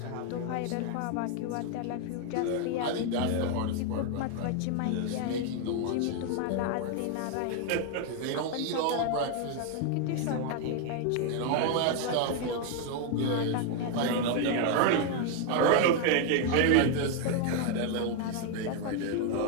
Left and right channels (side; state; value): both; different; correlation 0.01